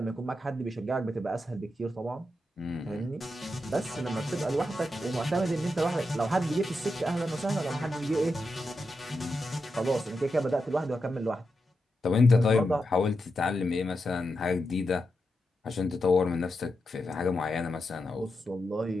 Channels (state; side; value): normal; both; correlation 0.87